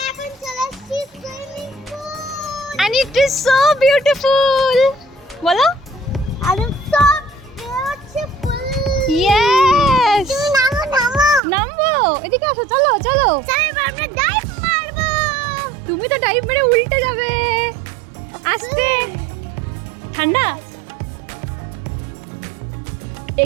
And it is so beautiful. বলো? Yes. নামবো, এদিকে আসো, চলো। তুমি তো ডাইভ মেরে উল্টে যাবে। আস্তে, ঠান্ডা,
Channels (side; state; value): left; drops out; at 11.4 s